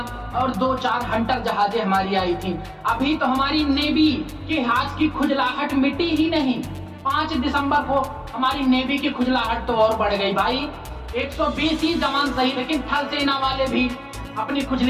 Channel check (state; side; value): identical; both; correlation 1.00